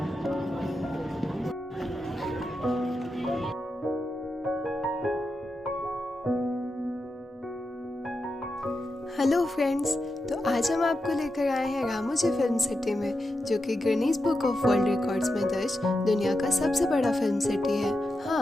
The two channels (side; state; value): both; normal; correlation 0.88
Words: hello friends, तो आज हम आपको लेकर आए हैं रामोजी फिल्म सिटी में, जो कि Guinness book of world records में दर्ज दुनिया का सबसे बड़ा फिल्म सिटी है।